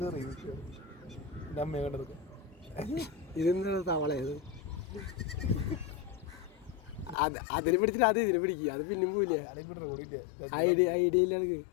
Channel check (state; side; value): drops out; right; at 7.2 s